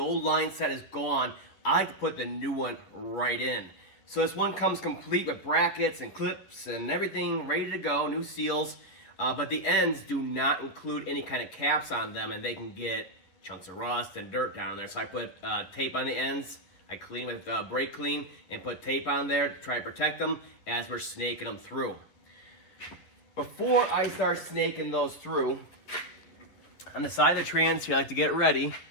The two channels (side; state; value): right; late; 11 ms